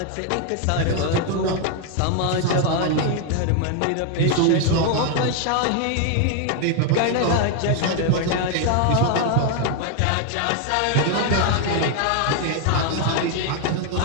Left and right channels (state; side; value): different; both; correlation 0.01